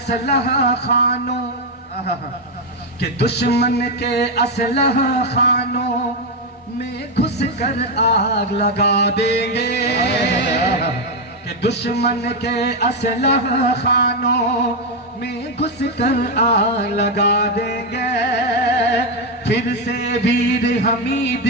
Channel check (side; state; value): both; normal; correlation 0.05